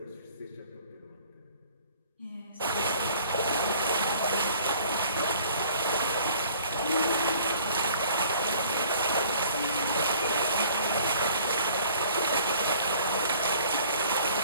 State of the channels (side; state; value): both; inverted; correlation -0.54